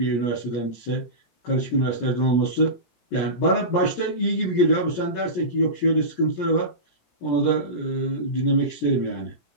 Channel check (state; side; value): late; right; 17 ms